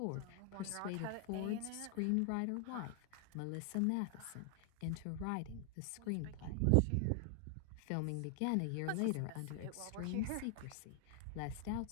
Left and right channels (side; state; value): both; different; correlation 0.00